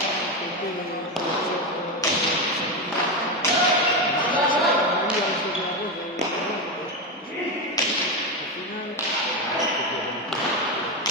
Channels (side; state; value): both; normal; correlation 0.13